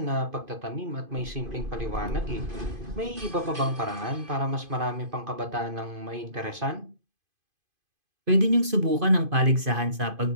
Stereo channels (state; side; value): late; left; 2.5 ms